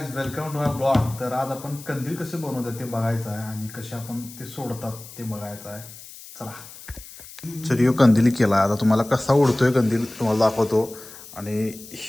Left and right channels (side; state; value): left; noise; hiss, 17 dB below the sound